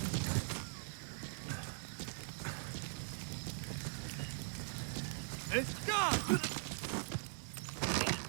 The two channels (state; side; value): silent; left; digital silence